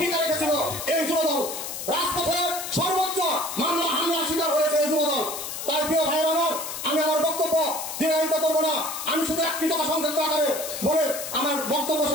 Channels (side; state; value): left; noise; hiss, 7 dB below the sound